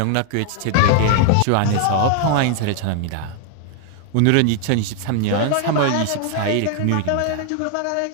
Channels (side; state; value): both; different; correlation 0.00